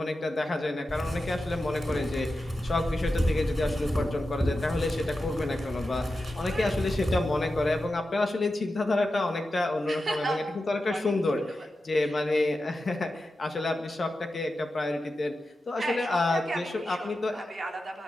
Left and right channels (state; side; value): normal; both; correlation 0.91